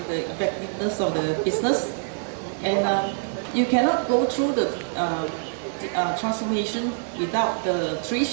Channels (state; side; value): silent; left; digital silence